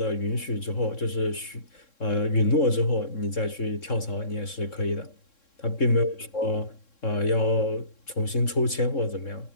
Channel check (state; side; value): late; right; 3.7 ms